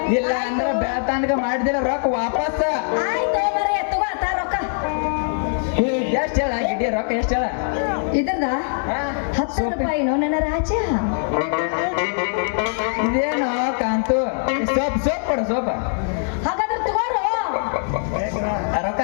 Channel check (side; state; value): right; silent; digital silence